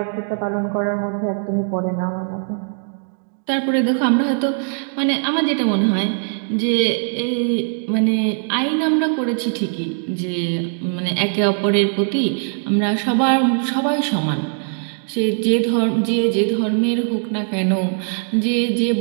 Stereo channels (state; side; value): silent; left; digital silence